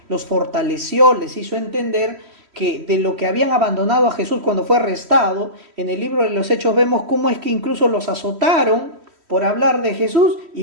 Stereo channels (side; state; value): left; late; 3.1 ms